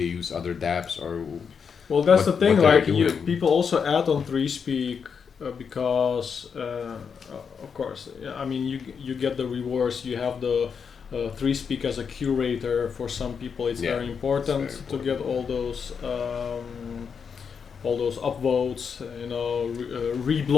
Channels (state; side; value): quieter; right; 6.4 dB